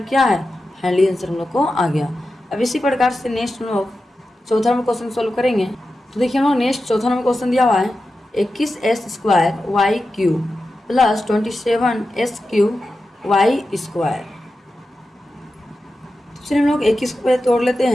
क्या है, फाइनली आंसर हम लोग को आ गया। अब इसी प्रकार से नेक्स्ट हम लोग चौथा नंबर क्वेश्चन सोल्व करेंगे। तो देखिए हम लोग नेक्स्ट चौथा नंबर क्वेश्चन दिया हुआ है 21s² y³ plus 27s³ y²। तो चलिए हम लोग 21 को तोड़ लेते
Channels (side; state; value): both; normal; correlation 0.92